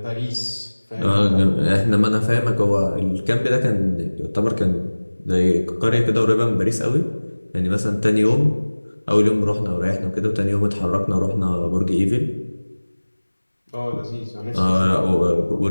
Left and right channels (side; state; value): both; inverted; correlation -1.00